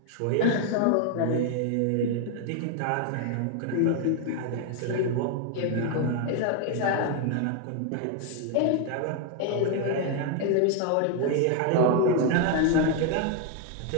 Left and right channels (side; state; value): both; different; correlation 0.00